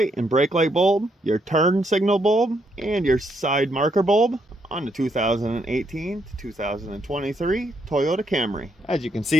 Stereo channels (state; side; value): normal; both; correlation 0.75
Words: and brake light bulb, your turn signal bulb, and your side marker bulb on the 2018 to 2023 Toyota Camry. As you can